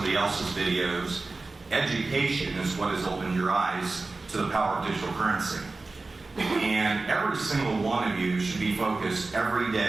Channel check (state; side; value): quieter; left; 3.5 dB